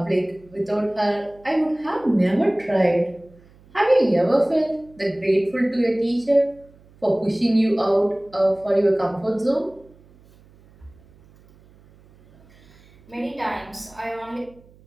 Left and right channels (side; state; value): right; noise; hum, 27 dB below the sound